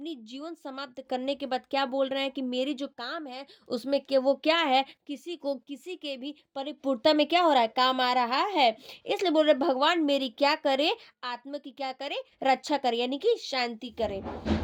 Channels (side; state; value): both; identical; correlation 1.00